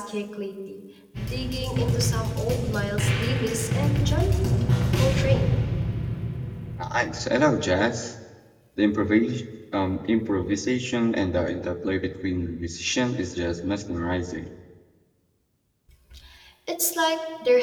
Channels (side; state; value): both; identical; correlation 1.00